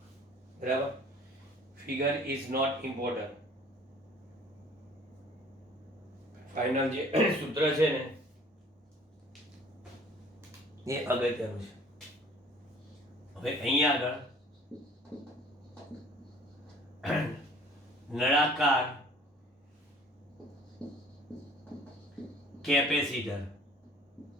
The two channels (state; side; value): normal; both; correlation 0.52